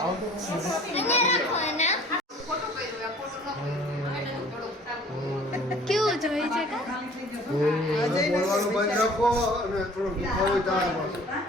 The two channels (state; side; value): normal; both; correlation 0.51